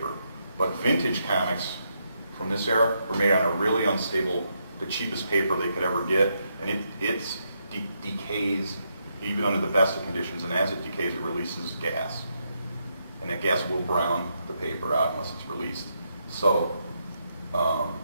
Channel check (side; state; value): both; inverted; correlation -0.80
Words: But vintage comics from this era were made on a really unstable, the cheapest paper they could ever get, and it decays even under the best of conditions, and as it decays, it releases gas. And that gas will brown the paper out unless it's released. So